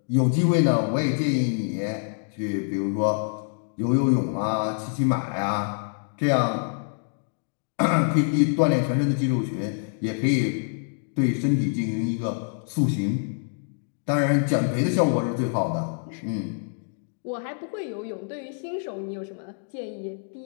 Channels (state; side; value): silent; right; digital silence